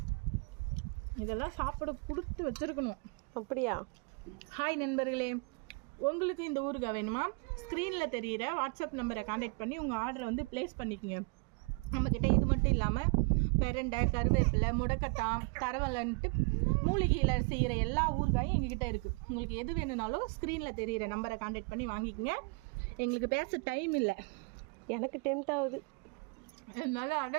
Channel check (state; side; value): quieter; left; 32.1 dB